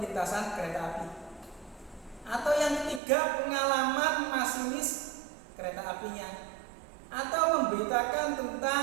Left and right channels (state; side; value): drops out; left; at 3.0 s